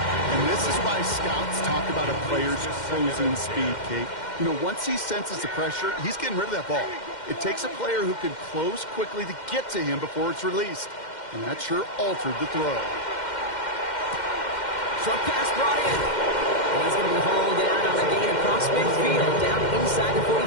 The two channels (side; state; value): right; late; 2.1 ms